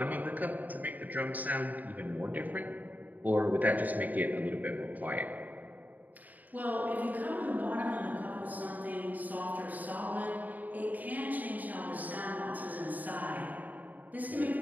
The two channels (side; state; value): left; late; 0.081 ms